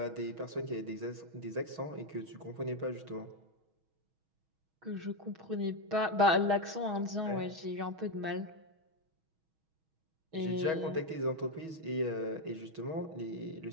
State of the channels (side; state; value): left; late; 6.3 ms